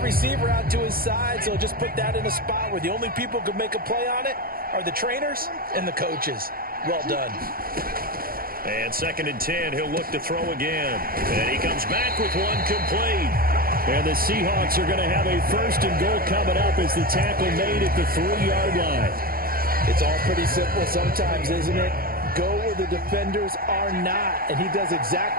receiver out to his side, so just put that in a spot where the only people who could make a play on it are the trainers and the coaches. Well done. And 2nd and 10, he'll look to throw again. And he comes back with one complete. And the Seahawks are going to have a 1st and goal coming up as the tackle made at the 3-yard line. It's all pretty simple sometimes, isn't it? Go where the defenders are not, and he does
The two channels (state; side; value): late; left; 0.43 ms